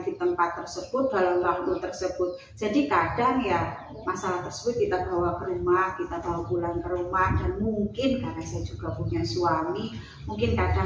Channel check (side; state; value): both; identical; correlation 1.00